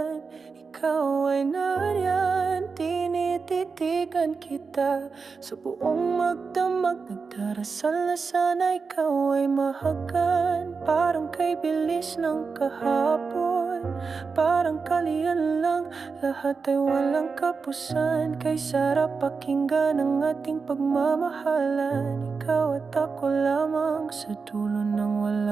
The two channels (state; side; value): quieter; left; 4.9 dB